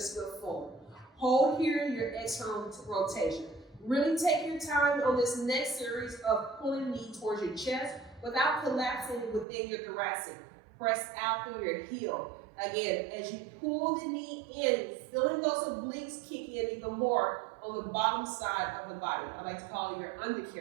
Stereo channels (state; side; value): drops out; left; at 9.5 s